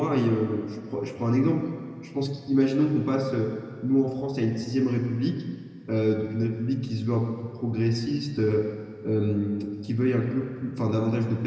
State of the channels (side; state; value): both; identical; correlation 1.00